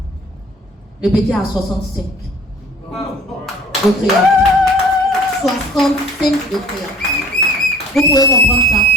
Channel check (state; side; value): normal; both; correlation 0.50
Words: Le petit a 65 de créatine. 65 de créatine. Vous pouvez comprendre ça.